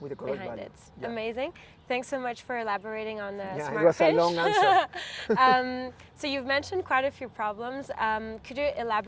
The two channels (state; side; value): identical; both; correlation 1.00